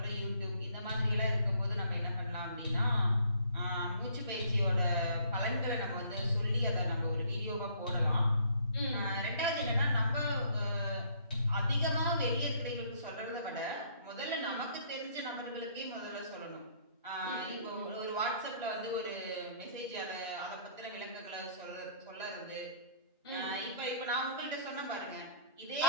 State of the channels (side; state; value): both; inverted; correlation -0.60